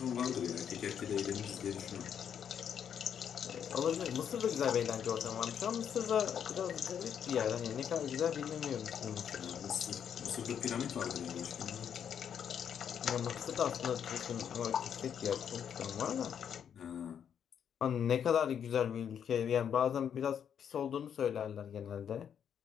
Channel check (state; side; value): quieter; right; 8.4 dB